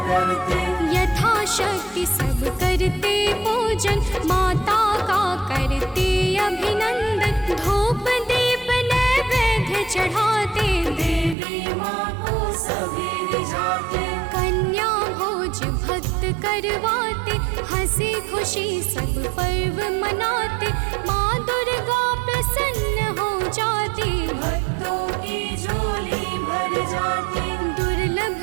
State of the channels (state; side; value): drops out; left; at 11.4 s